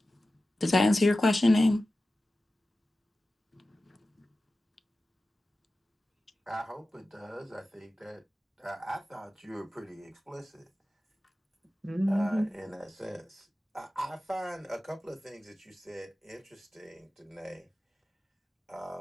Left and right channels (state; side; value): normal; both; correlation 0.94